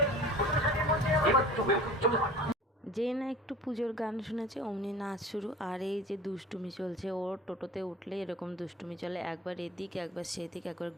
যে না একটু পুজোর গান শুনেছে অমনি নাচ শুরু। আর এই যে দুষ্টুমি চলছে, ওর টোটোতে উঠলে এরকম দুষ্টুমি চলে, একবার এদিক একবার সেদিক, একবার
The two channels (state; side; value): normal; both; correlation 0.41